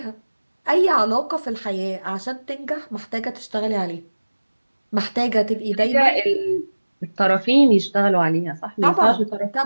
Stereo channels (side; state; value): both; inverted; correlation -1.00